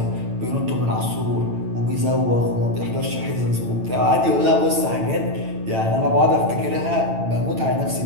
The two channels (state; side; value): late; left; 9.0 ms